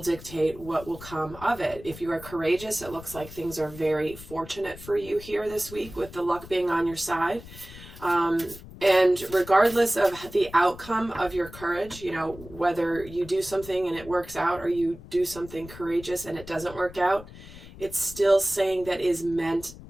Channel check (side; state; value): left; noise; rumble, 16 dB below the sound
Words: dictate what will come of it. If you are courageous, it looks like things are very fortunate for you here this week with the luck being on your side. And regardless of the outcome of your courage, whether you do something and it works out or you do something courageous and it doesn't work out, it's still saying that is meant